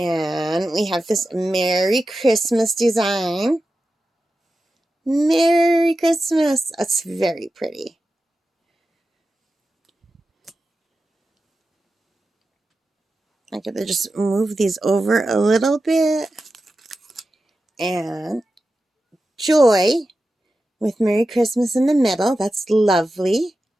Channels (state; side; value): normal; both; correlation 0.92